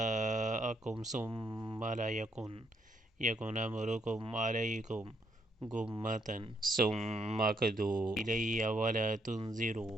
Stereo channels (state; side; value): normal; both; correlation 0.75